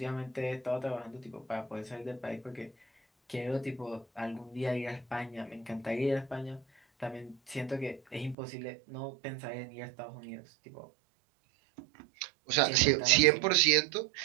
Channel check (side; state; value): left; drops out; at 8.3 s